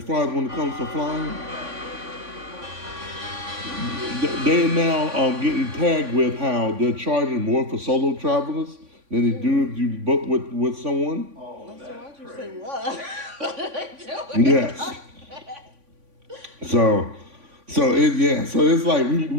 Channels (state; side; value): late; left; 3.5 ms